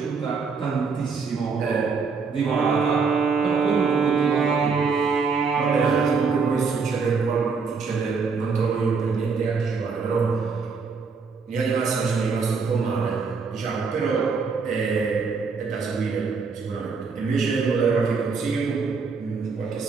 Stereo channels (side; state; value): left; quieter; 5.0 dB